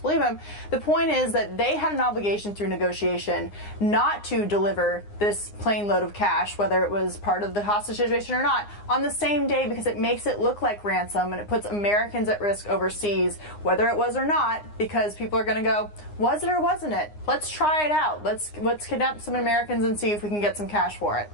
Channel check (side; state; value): right; late; 9.7 ms